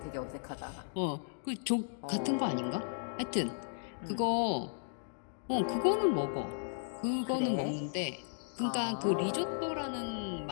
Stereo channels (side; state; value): right; silent; digital silence